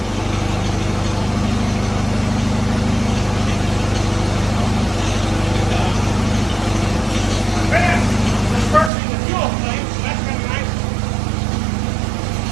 Dispersing the fuel flame, so that's kind of nice.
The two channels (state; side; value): drops out; left; at 8.9 s